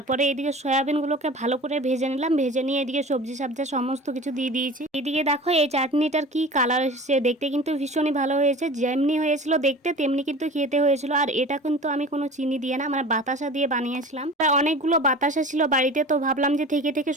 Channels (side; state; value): both; normal; correlation 0.38